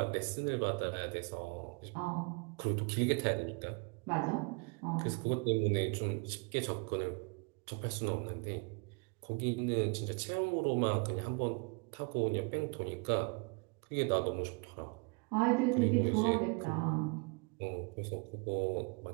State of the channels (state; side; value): quieter; left; 32.9 dB